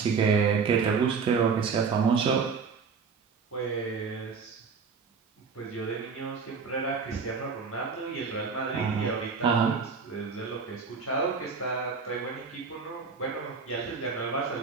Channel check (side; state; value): left; quieter; 5.3 dB